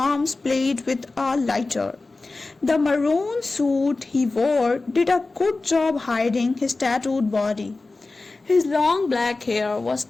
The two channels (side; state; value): right; quieter; 3.5 dB